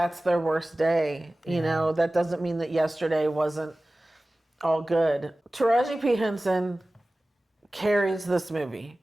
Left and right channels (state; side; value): normal; both; correlation 0.97